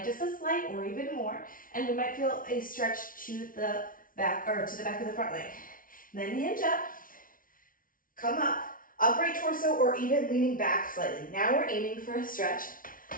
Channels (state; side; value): late; right; 0.40 ms